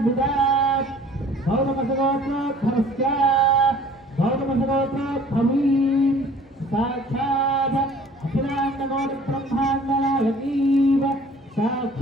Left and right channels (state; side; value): normal; both; correlation 0.51